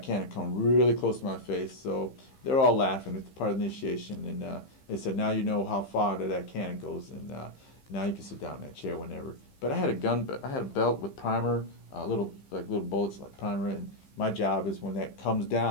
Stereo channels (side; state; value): right; late; 15 ms